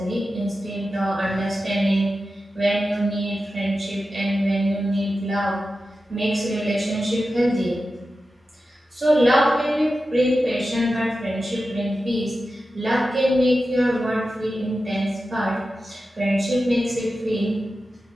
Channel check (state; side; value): normal; both; correlation 0.92